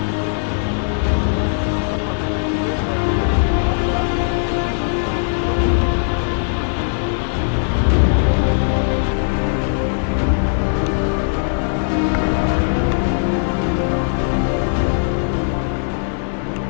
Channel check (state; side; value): silent; right; 67 dB below the other